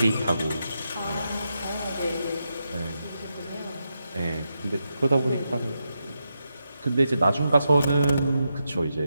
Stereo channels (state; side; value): inverted; both; correlation -0.86